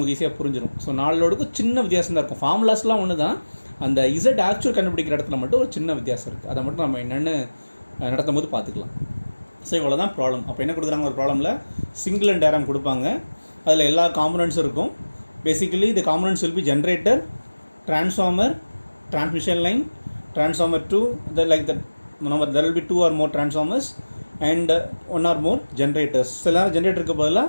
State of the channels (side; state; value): both; inverted; correlation -1.00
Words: ஈஸியாக புரிஞ்சிடும். ஸோ 4 லோடுக்கும் சின்ன வித்தியாசம் தான் இருக்கும், ஃபார்முலாஸ்லாம் ஒன்று தான், அந்த இசட் ஆக்சுவல் கண்டுபிடிக்கிற இடத்துல மட்டும் ஒரு சின்ன வித்தியாசம் இருக்குது. அதை மட்டும் நம்ம என்னென்னு நடத்தும் போது பார்த்துக்கலாம். ஸோ இவ்வளோ தான் ப்ராப்ளம். அப்போ என்ன கொடுக்குறாங்க, ஒரு ப்ராப்ளமில் சிங்கிள் அண்ட் டயக்ராம் கொடுப்பாங்க, அதில் எல்லா காம்பனன்ட்ஸும் இருக்கும். Basically the components will be generator, transformer, transmission line, transformer 2, like that. There will be 2 or more transformers and 1 or more generators. சில நேரம் ஜென்ரேட்டருக்கு பதிலாக